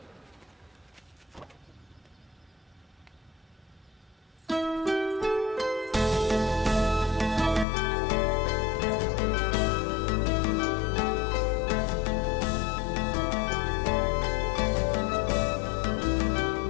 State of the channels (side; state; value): right; drops out; at 7.7 s